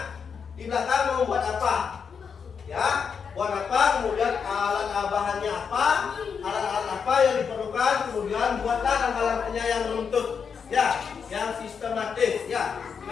di belakang mau buat apa, ya. Buat apa, kemudian alat bahannya apa, alat-alat apa yang diperlukan, kemudian buatlah langkah-langkahnya yang runtut, ya, yang sistematis, ya.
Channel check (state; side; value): quieter; right; 6.4 dB